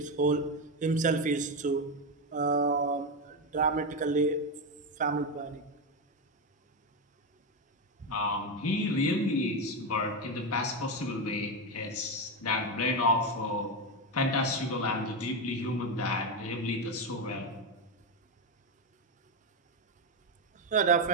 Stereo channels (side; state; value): both; normal; correlation 0.10